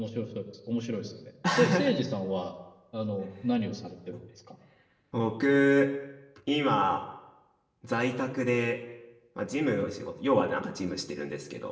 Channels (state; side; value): identical; both; correlation 1.00